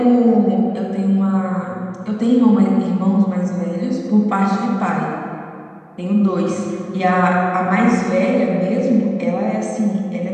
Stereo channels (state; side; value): identical; both; correlation 1.00